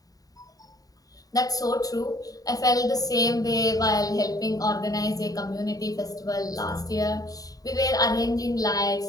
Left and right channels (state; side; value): late; right; 0.18 ms